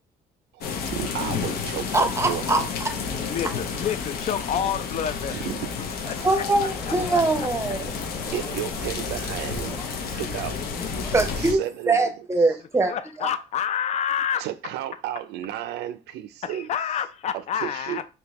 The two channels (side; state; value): both; normal; correlation 0.39